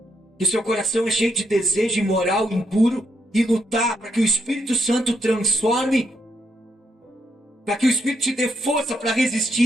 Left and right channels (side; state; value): both; normal; correlation 0.77